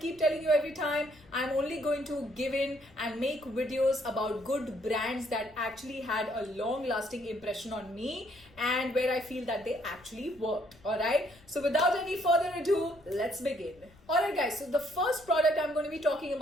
telling you every time, I'm only going to give in and make videos about good brands that actually had a long-lasting impression on me and where I feel that they actually worked. Alright, so without any further ado, let's begin. Alright guys, so the first product I'm going to be talking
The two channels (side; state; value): left; noise; rumble, 26 dB below the sound